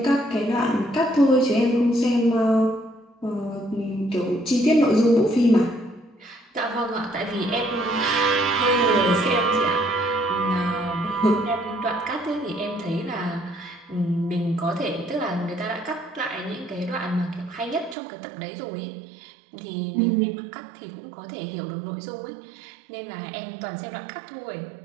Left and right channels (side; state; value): left; drops out; at 17.9 s